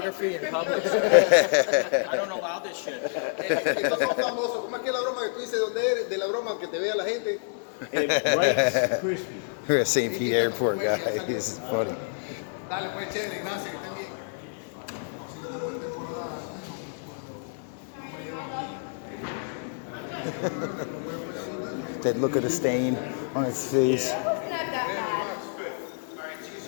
in public. I don't allow this shit. Estos son famosos. ¿Cómo es que la broma que tú dices? ¿Dónde eres? De la broma, aunque te vea la gente. We're at St. Pete Airport, guys. This is funny. Dale, pues, chévere, gracias, que estén bien. That look at the stain on his face.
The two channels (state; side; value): silent; right; digital silence